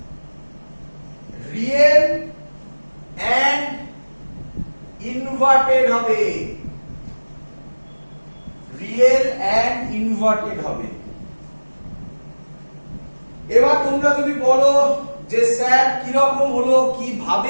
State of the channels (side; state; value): both; inverted; correlation -1.00